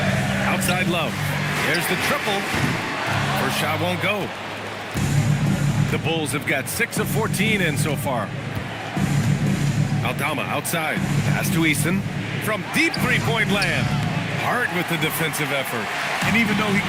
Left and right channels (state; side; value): identical; both; correlation 1.00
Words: Outside Love. There's the triple. First shot won't go. The Bulls have got 6 of 14 in so far. Aldama outside. Pass to Easton. From deep three-point land. Heart with the defensive effort. And even though he